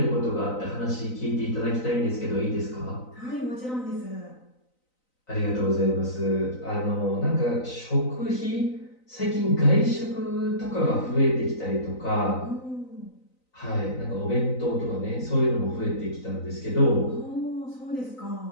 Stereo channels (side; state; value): right; late; 3.9 ms